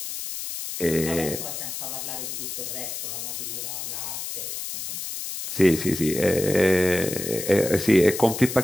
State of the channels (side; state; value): left; noise; hiss, 6 dB below the sound